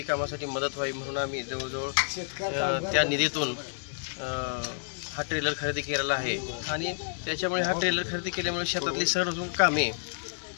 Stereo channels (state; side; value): silent; right; digital silence